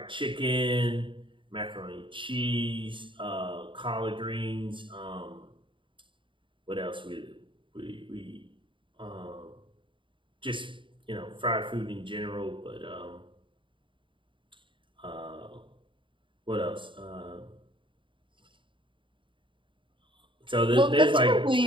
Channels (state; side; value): late; left; 0.24 ms